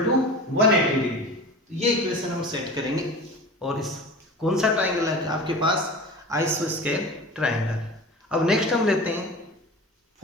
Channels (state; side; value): normal; both; correlation 0.35